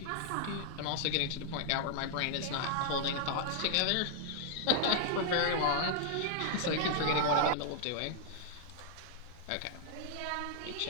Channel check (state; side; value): different; both; correlation 0.00